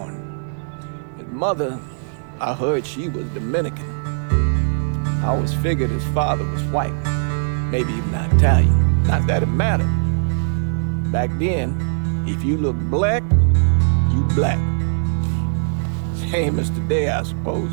His mother, I heard she was Dominican. I always figured his father was white, maybe even Italian. Not that it mattered. Back then, if you look black, you black. Same as today, I suppose.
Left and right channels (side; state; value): left; silent; 66 dB below the other